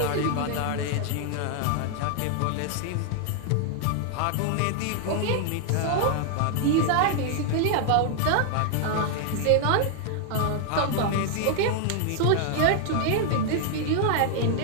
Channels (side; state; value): both; different; correlation 0.00